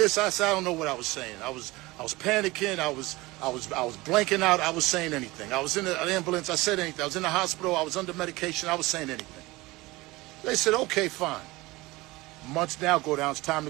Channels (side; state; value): left; quieter; 21.0 dB